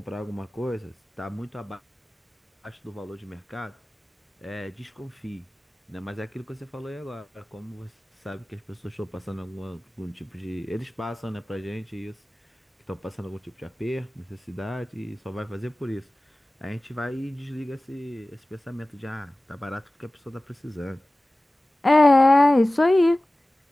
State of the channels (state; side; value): normal; both; correlation 0.97